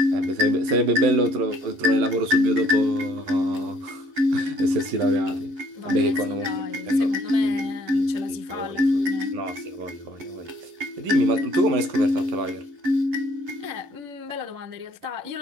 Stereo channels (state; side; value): late; left; 11 ms